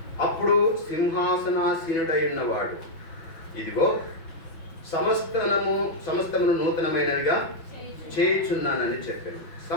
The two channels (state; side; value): late; right; 5.8 ms